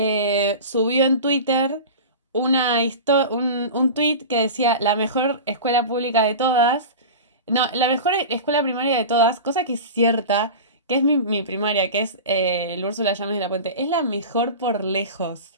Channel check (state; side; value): inverted; both; correlation -0.30